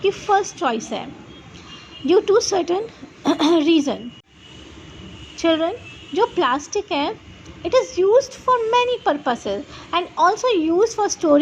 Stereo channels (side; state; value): both; identical; correlation 1.00